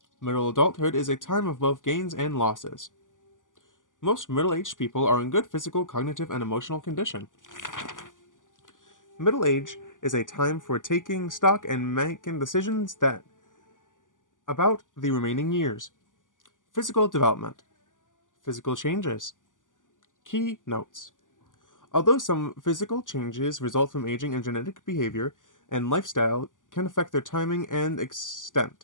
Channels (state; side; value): late; right; 0.88 ms